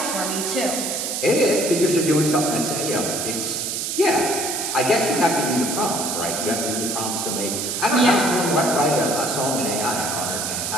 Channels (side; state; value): right; noise; hiss, 2 dB below the sound